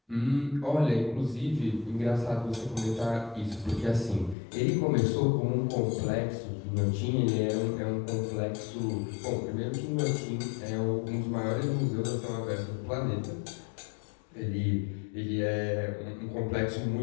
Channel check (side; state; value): right; drops out; at 4.4 s